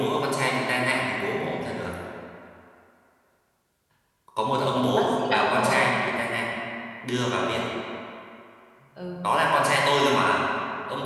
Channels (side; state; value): both; identical; correlation 1.00